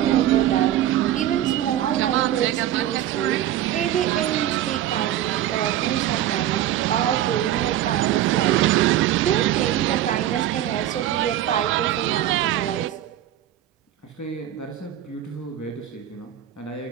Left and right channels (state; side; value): quieter; left; 12.1 dB